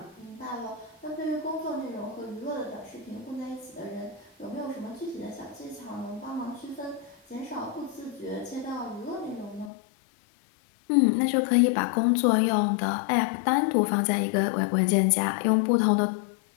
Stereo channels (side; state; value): right; drops out; at 9.7 s